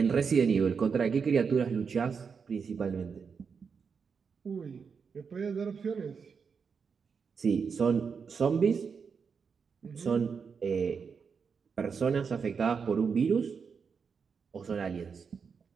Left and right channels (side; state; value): left; quieter; 5.9 dB